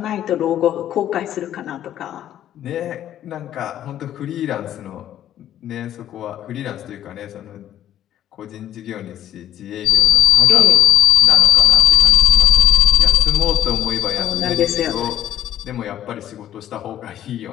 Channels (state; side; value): quieter; right; 11.4 dB